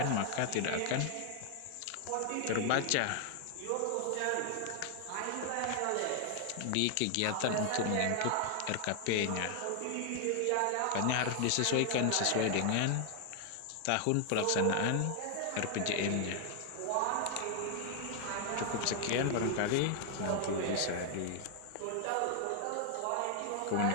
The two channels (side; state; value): both; different; correlation 0.00